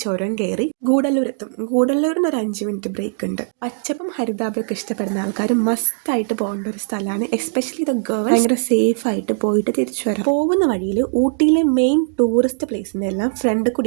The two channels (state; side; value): silent; left; digital silence